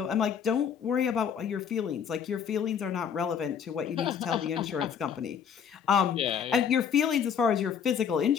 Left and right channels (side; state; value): right; quieter; 7.6 dB